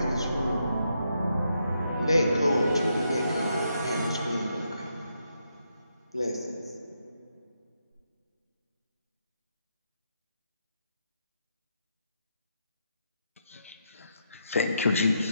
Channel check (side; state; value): both; inverted; correlation -0.80